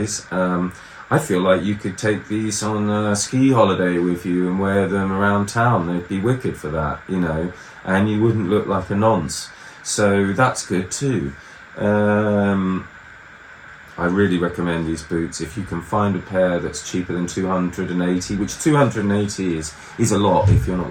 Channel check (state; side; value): identical; both; correlation 1.00